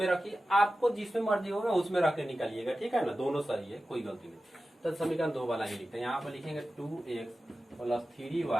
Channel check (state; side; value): normal; both; correlation 0.94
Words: रखिए, आपको जिसमें मर्जी होगा उसमें रख के निकालिएगा, ठीक है ना, दोनों सही है, कोई गलती नहीं। तो समीकरण 2 वाला ही लिखते हैं, यहाँ पर लिखेंगे 2x +